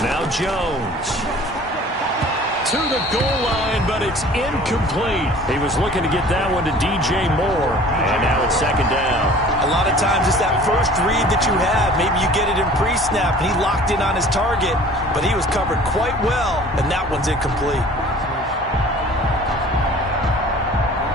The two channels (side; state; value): both; normal; correlation 0.47